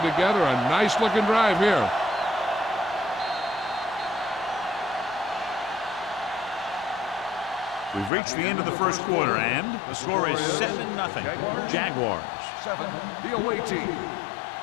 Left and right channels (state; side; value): drops out; right; at 8.1 s